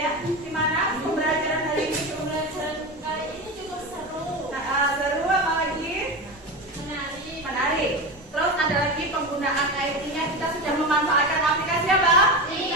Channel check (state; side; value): normal; both; correlation 0.22